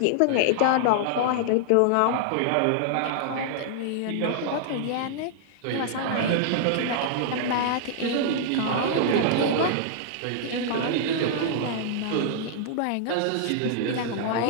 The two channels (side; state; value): both; different; correlation -0.01